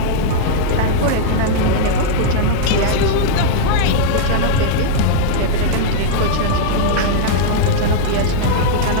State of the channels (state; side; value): different; both; correlation -0.02